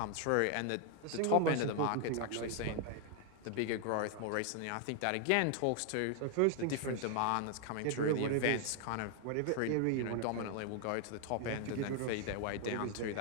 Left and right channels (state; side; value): different; both; correlation 0.00